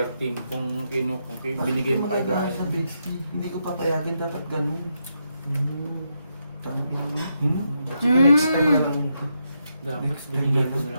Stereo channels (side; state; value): both; inverted; correlation -0.82